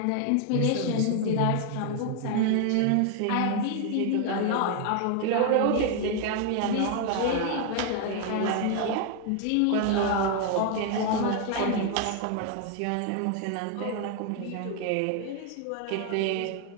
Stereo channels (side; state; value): both; different; correlation 0.00